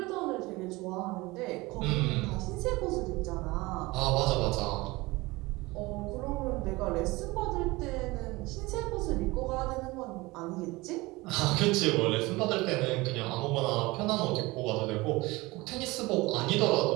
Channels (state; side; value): quieter; left; 21.8 dB